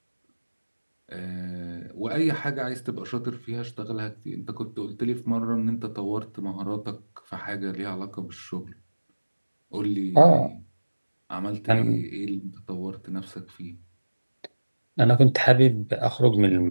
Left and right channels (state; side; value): inverted; both; correlation -1.00